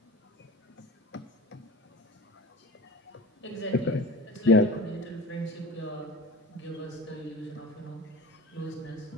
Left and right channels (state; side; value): normal; both; correlation 0.36